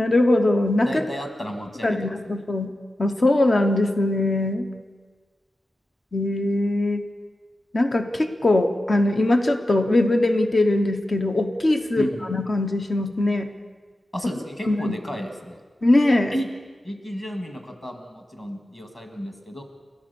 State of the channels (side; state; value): both; normal; correlation 0.92